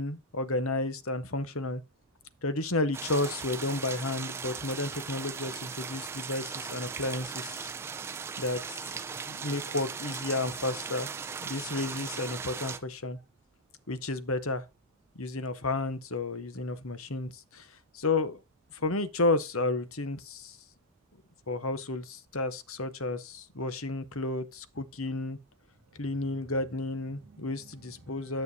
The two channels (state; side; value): normal; both; correlation -0.03